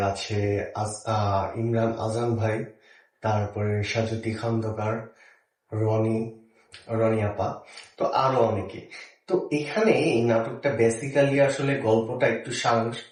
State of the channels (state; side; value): identical; both; correlation 1.00